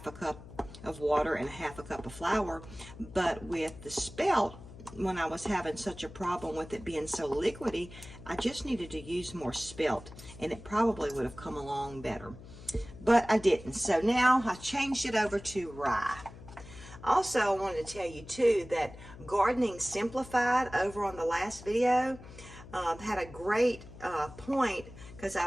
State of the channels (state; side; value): noise; left; hum, 16 dB below the sound